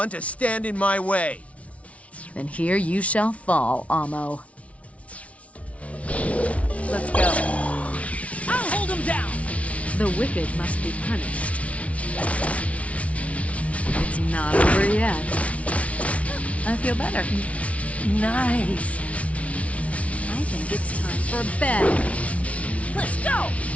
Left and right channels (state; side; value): late; right; 0.065 ms